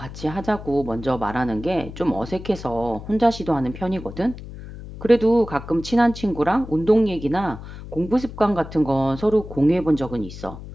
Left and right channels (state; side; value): noise; left; hum, 13 dB below the sound